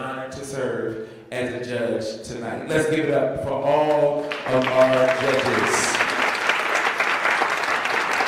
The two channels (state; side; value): identical; both; correlation 1.00